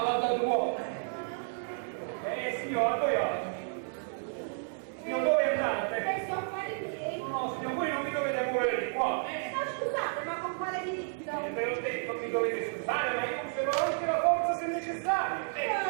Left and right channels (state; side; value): silent; left; digital silence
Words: Signor, signor, dove andate? Adesso a fare miei. No, signor, voi non mi dovete muovere di qua. Ma scusate, ma con quale diritto? Ve l'ho detto, mi dovete scusare, ma io conservo anche la forza se necessario.